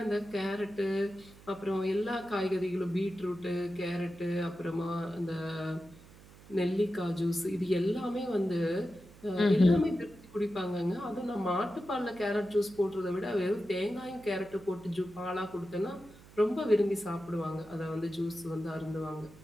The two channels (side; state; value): right; noise; hum, 22 dB below the sound